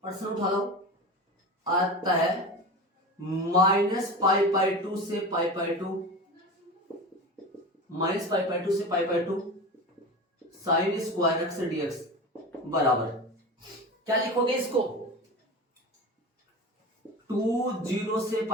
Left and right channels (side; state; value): both; normal; correlation 0.29